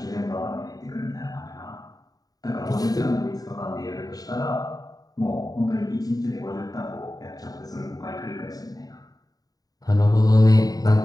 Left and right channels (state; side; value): late; right; 0.18 ms